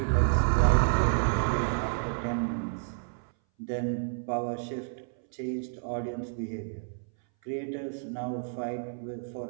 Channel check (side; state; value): left; silent; 58 dB below the other